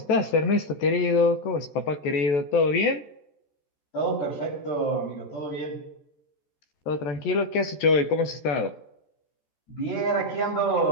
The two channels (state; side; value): late; right; 14 ms